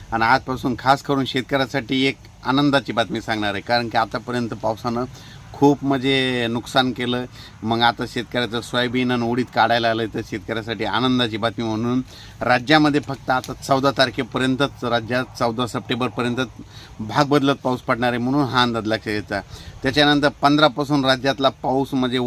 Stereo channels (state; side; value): identical; both; correlation 1.00